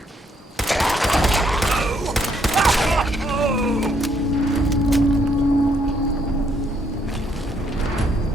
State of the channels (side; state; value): both; normal; correlation 0.71